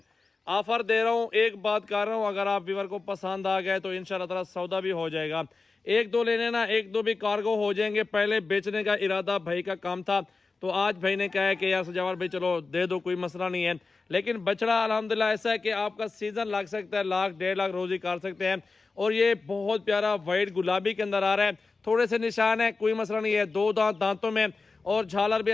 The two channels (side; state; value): right; quieter; 4.0 dB